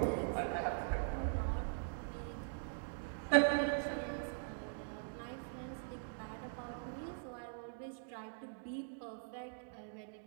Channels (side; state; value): left; silent; digital silence